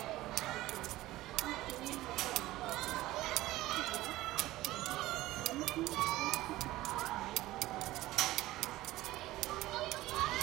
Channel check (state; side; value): quieter; left; 17.0 dB